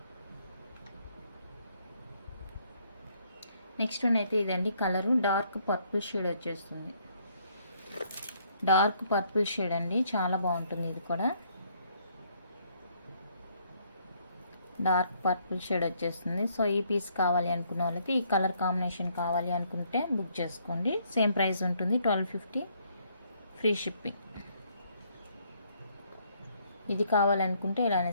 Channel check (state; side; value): inverted; both; correlation -0.68